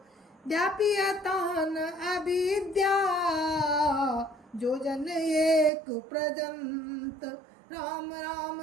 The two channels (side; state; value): left; drops out; at 5.7 s